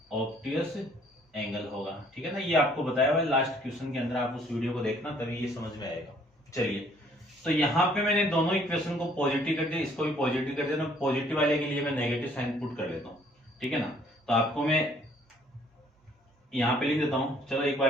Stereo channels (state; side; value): normal; both; correlation 0.61